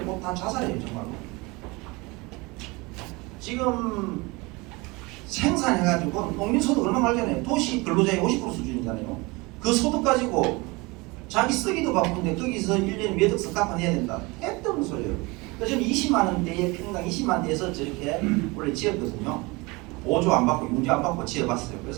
꼭 다 자살해요 정말로. 지금 생산해가지고 농민소득 얼마 말잖아요. 도시 근로자의 50% 수준이잖아요. 그 소득 가지고 자기 쓰기도 바쁜데 거기서 1년에 몇 억씩 갚아내야 된다. 택도 없는 소리예요. 그래서 저는 20만 원대에 평당 20만 원대에서 저렇게 원래 지었거든요. 보조 안 받고 융자 안 받고 지어봤어요.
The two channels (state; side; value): quieter; left; 25.0 dB